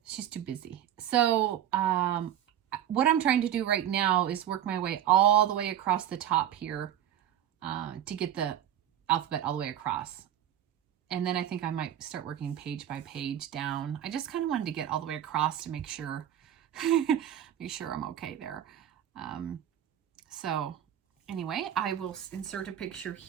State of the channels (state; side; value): quieter; left; 10.7 dB